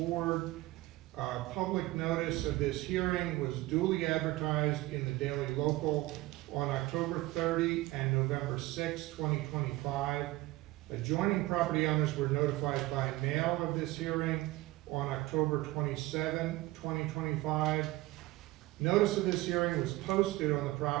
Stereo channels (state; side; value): quieter; left; 19.0 dB